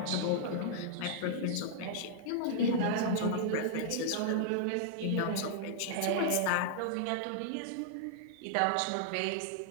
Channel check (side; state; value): both; different; correlation -0.01